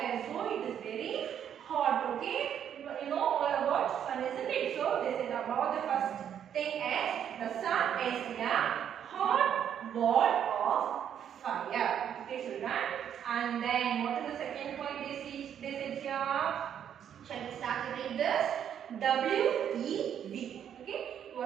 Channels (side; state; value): left; quieter; 9.1 dB